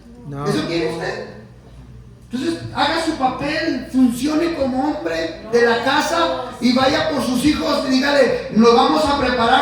No. ¿Eso quiere usted? Entonces, haga su papel, funcione como hombre de la casa y vaya por sus hijos y dígale, nos vamos a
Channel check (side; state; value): both; identical; correlation 1.00